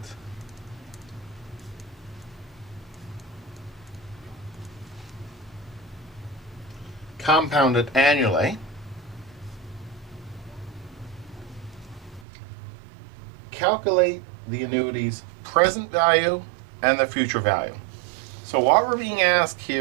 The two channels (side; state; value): left; drops out; at 12.2 s